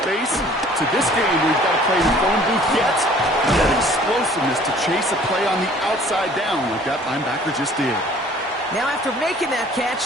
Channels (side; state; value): both; normal; correlation 0.53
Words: to this game where you've got to play in the phone booth yet. And that explosiveness to chase a play on the outside down like that linebacker just did. Now, after making that